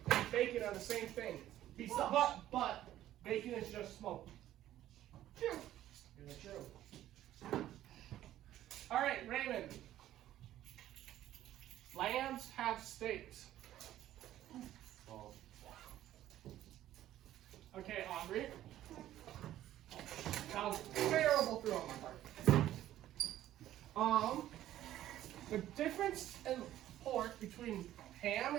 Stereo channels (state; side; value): quieter; left; 13.1 dB